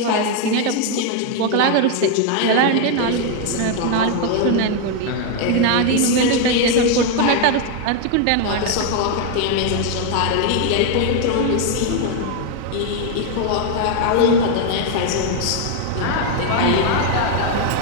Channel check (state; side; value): different; both; correlation 0.01